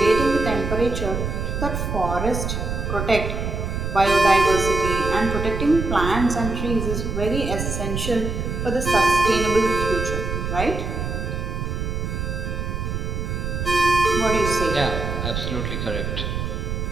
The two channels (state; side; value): noise; right; rumble, 3 dB below the sound